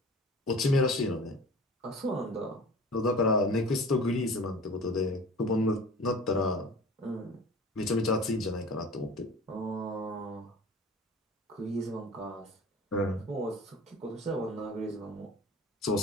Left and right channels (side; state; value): both; normal; correlation 0.41